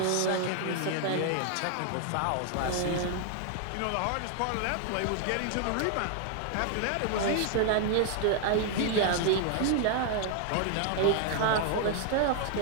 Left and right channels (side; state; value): both; different; correlation 0.00